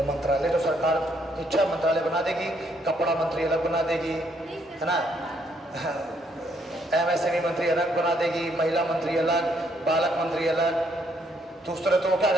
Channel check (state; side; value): normal; both; correlation 0.71